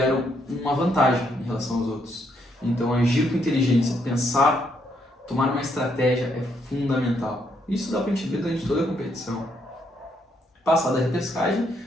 uma vantagem em relação aos outros. Então, agir com inteligência, pensar, tomar uma estratégia é fundamental. Isso dá para a gente ver durante toda a competição. Passada a repescagem,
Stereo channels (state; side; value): normal; both; correlation 0.74